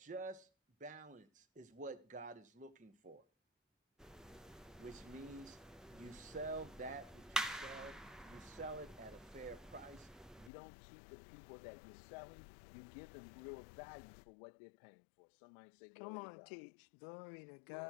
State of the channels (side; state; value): right; drops out; at 10.5 s